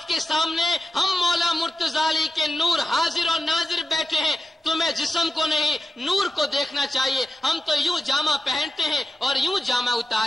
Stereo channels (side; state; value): both; normal; correlation 0.92